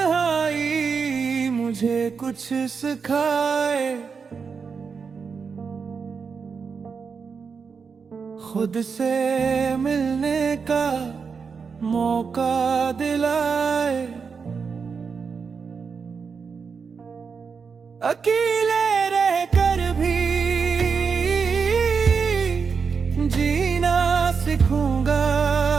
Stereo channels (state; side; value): quieter; left; 5.6 dB